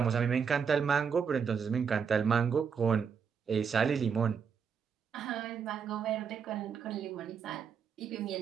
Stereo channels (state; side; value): quieter; left; 6.6 dB